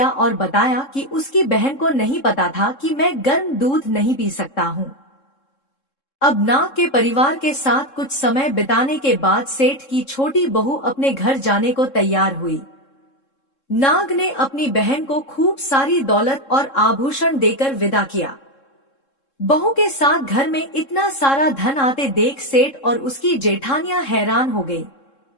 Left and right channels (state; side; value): late; right; 3.7 ms